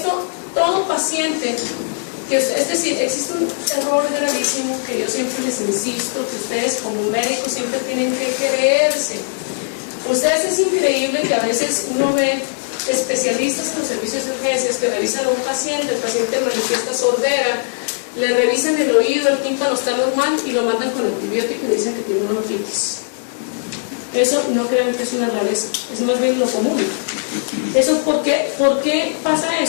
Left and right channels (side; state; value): right; silent; digital silence